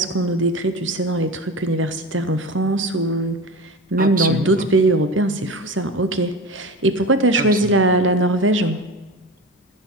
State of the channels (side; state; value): both; normal; correlation 0.28